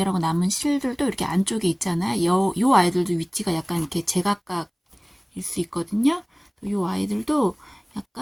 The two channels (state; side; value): identical; both; correlation 1.00